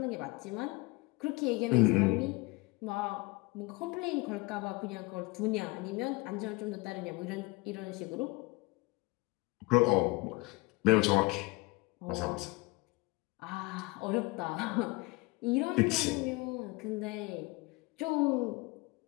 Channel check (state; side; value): quieter; right; 24.2 dB